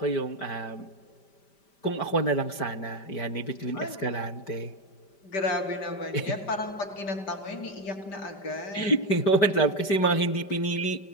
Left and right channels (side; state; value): right; late; 5.1 ms